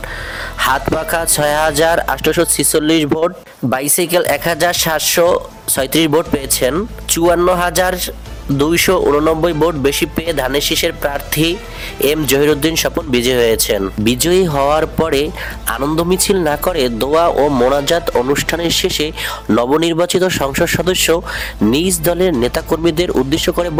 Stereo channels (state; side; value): identical; both; correlation 1.00